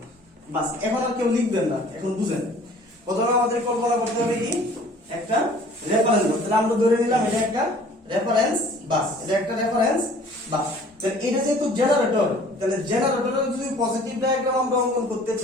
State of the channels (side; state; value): both; normal; correlation 0.51